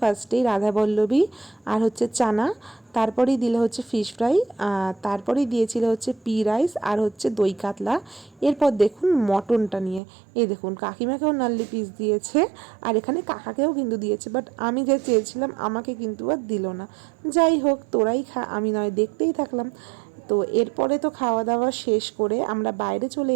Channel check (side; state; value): left; drops out; at 10.0 s